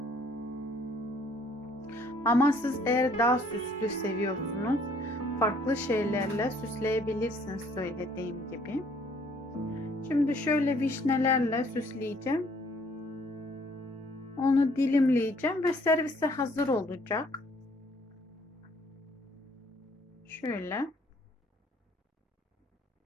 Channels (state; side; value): normal; both; correlation 0.61